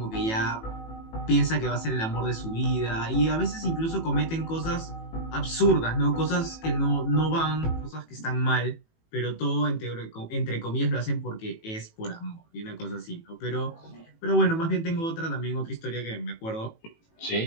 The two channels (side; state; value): right; late; 18 ms